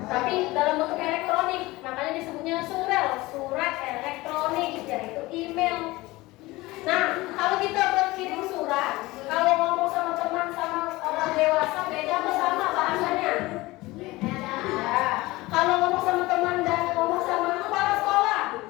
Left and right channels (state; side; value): quieter; right; 20.2 dB